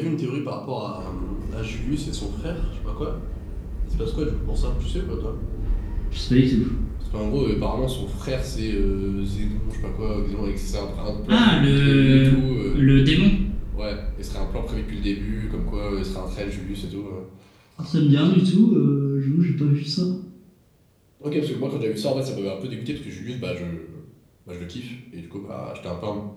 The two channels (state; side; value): identical; both; correlation 1.00